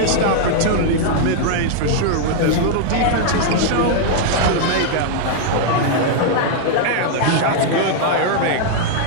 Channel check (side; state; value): both; different; correlation 0.00